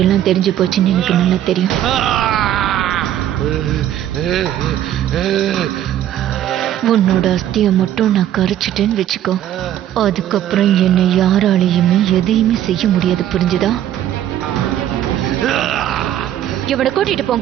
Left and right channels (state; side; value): quieter; left; 11.6 dB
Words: எல்லாம் தெரிஞ்சு போச்சுன்னு எனக்கு நல்லா தெரியும். உன்னோட அஸ்தியை மட்டும் நான் கரைச்சிட்டேன்னு வச்சுக்கோ. அதுக்கப்புறம் என்னை யாராலையுமே எதையுமே செய்ய முடியாது, புரிஞ்சுதா? இவனை கூட்டிட்டு